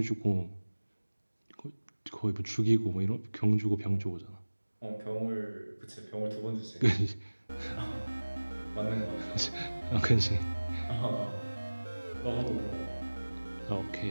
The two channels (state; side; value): inverted; both; correlation -1.00